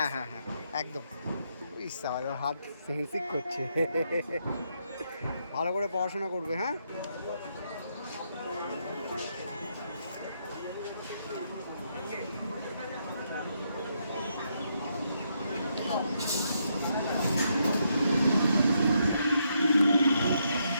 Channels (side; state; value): both; inverted; correlation -0.78